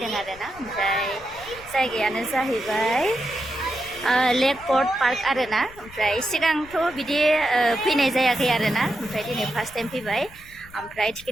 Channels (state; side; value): noise; left; rumble, 21 dB below the sound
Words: आरोना ओमफ्राय जायगायानो जाहैबाय लेक पर्ट पार्क आरोना ओमफ्राय सिगांथ' बिदि फैनाय जायाखै आरोना ओमफ्राय दिनै फार्स्ट टाइम फैबाय ओमफ्राय